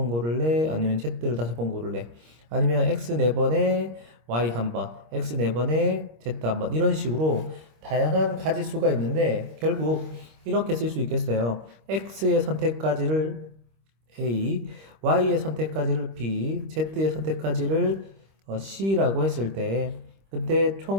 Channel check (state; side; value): late; left; 26 ms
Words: 고를래? 아니면 z를 5번 고를래? 아니면 x 4번에 y 1번, x 4번에 z 1번 이런 식으로 다양한 가지수가 있는데 결국 이렇게 쓸 수 있겠어요. x의 선택까지를 A, Y의 선택까지를 B, Z의 선택까지를 C라고 했을 때 그때